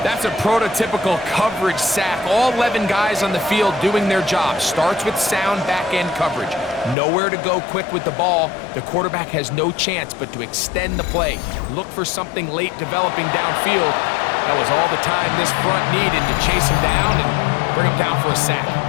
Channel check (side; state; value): right; drops out; at 7.0 s